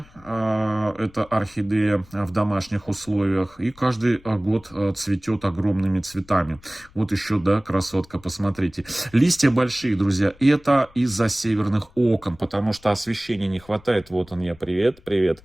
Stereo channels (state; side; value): noise; left; rumble, 26 dB below the sound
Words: Это орхидея в домашних условиях. И каждый год цветет огромными цветами. Вот еще, да, красотка, посмотрите. Листья большие, друзья. Это из-за северных окон, потому что освещения не хватает. Вот он я, привет, привет.